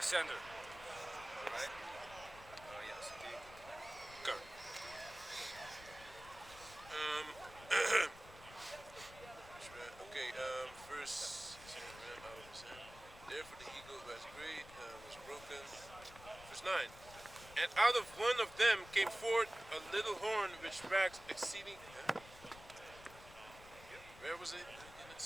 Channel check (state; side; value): noise; left; rumble, 18 dB below the sound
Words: Right? Yes, indeed. Okay. Verse ram out of his hand. Therefore the eagle was great, was broken. Verse 9. And out of one of them came forth a little horn which waxed exceeding. Where was it?